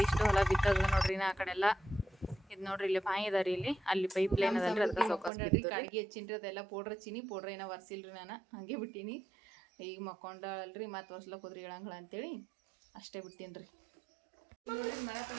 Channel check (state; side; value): drops out; left; at 5.3 s